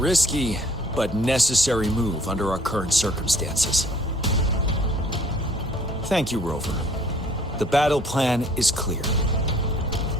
but necessary move under our current circumstances. Thank you, Rover. The battle plan is clear.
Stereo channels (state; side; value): normal; both; correlation 0.56